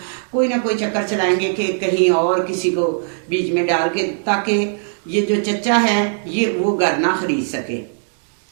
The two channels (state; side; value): silent; left; digital silence